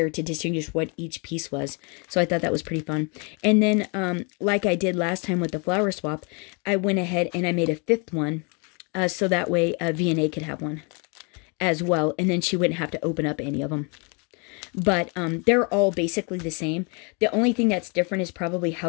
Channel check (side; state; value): right; quieter; 33.5 dB